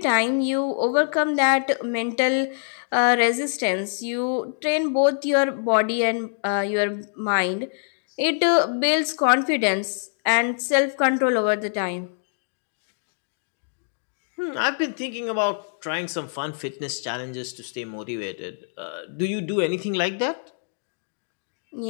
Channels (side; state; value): right; silent; digital silence